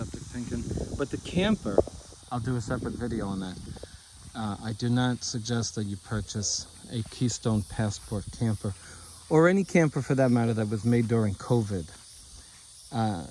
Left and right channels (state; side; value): identical; both; correlation 1.00